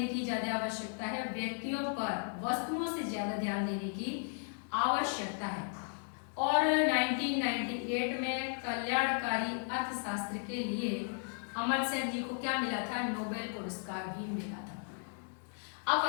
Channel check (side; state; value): right; silent; 54 dB below the other